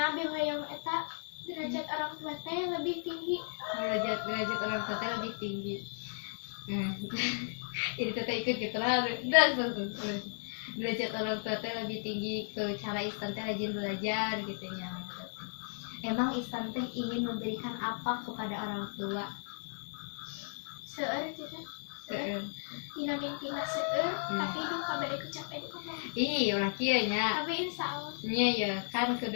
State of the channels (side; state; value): right; silent; 55 dB below the other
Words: abis hayang eta derajat orang tua teh lebih tinggi. Derajat orang tua teh lebih tinggi. Nah, jadi teteh ikut gitu lah. Derajat orang tua teh lebih tinggi, ke cara Istan teh rajin belajar gitu nya. Emang Istan teh ingin memberikan apa kepada orang tua? Seueur teh seueur dina mimpi mah seueur, tapi duh kabeh kecapean kumaha. Iya ulah kieu nya. Tapi insya Allah Nya ya kan